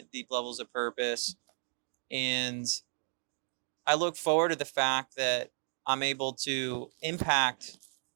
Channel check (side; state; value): left; silent; 55 dB below the other